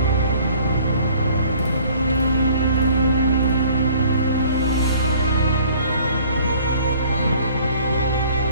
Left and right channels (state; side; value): inverted; both; correlation -0.54